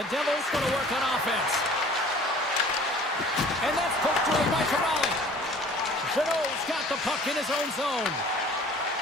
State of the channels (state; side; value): normal; both; correlation 0.49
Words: Devils going to work on offense. And that's poked away by Corrali. Jeannot's got the puck in his own zone.